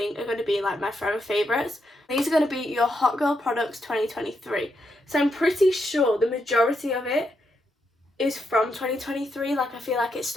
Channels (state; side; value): normal; both; correlation 0.81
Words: are going to be like my forever favourites. These are going to be your Hot Girl Products 2023. So I'm pretty sure the majority of it is from 2023. Like, I feel like it's